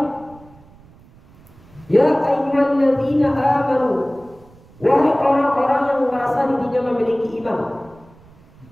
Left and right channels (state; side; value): noise; right; rumble, 25 dB below the sound